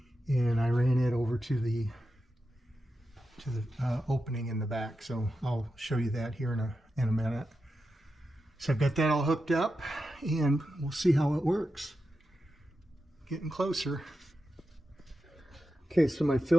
and I ran it over to the opening in the back. So I'll show you that here in a minute. So I've got that all hooked up, and we'll see how it works. Getting closer. Okay, so my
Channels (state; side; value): normal; both; correlation 0.90